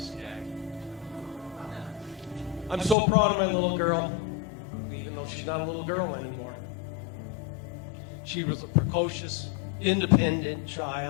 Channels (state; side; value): drops out; right; at 3.0 s